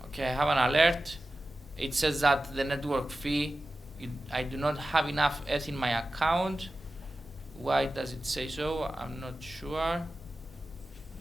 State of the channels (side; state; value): both; normal; correlation 0.94